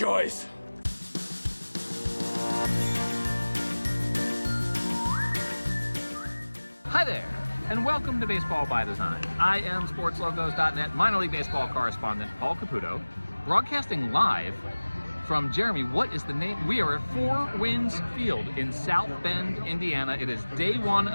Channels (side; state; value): both; inverted; correlation -1.00